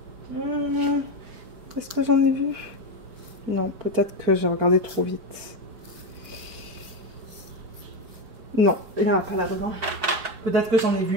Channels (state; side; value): late; left; 4.4 ms